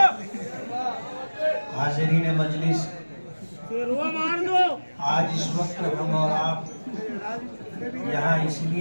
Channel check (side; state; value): both; inverted; correlation -1.00